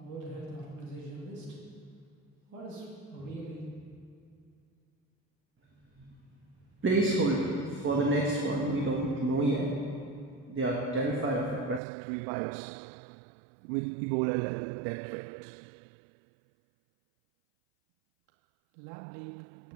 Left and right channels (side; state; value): left; drops out; at 11.8 s